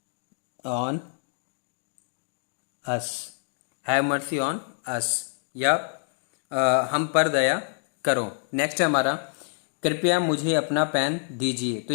on us, have mercy on us, या हम पर दया करो। नेक्स्ट है हमारा कृपया मुझे अपना पेन दीजिए। तो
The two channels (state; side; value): silent; right; 60 dB below the other